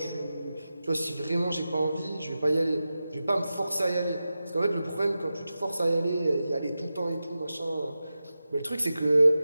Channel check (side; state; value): both; inverted; correlation -0.93